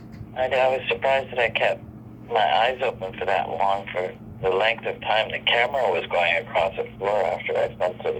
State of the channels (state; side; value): identical; both; correlation 1.00